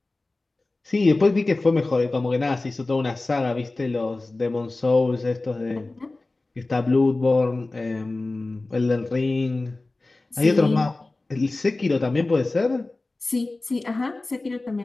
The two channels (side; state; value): right; quieter; 3.1 dB